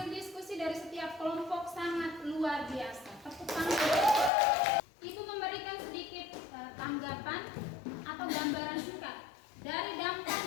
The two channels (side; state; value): right; drops out; at 4.3 s